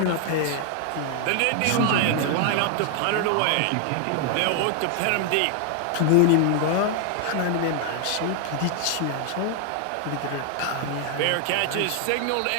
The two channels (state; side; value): different; both; correlation 0.00